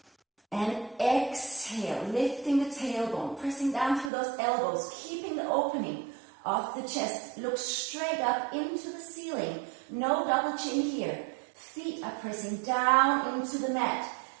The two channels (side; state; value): left; drops out; at 4.1 s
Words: And exhale, lifting the tailbone, pressing down through those elbows, keeping the opening of the chest. Look straight up into the ceiling. No double chin here. Feet are pressing down into the mat.